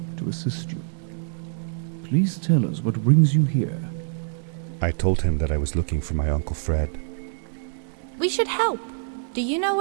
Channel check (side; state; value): left; silent; digital silence